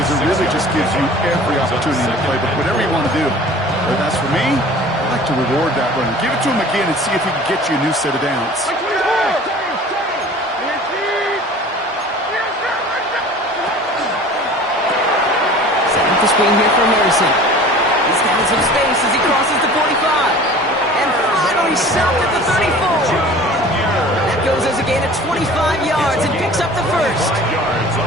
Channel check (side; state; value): both; normal; correlation 0.44